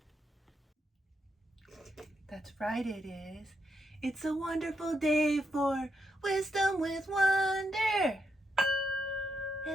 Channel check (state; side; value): normal; both; correlation 0.81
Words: That's right, it is. It's a wonderful day for wisdom with wonder